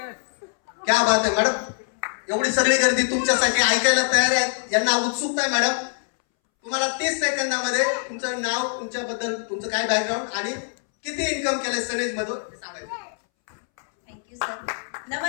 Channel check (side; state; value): right; silent; 63 dB below the other